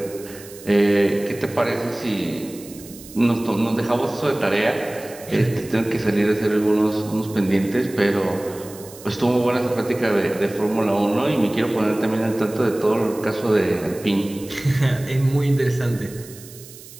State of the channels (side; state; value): right; noise; hiss, 18 dB below the sound